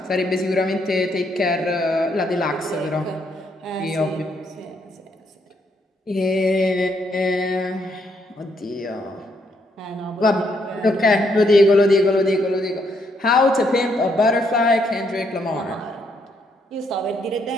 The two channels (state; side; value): normal; both; correlation 0.74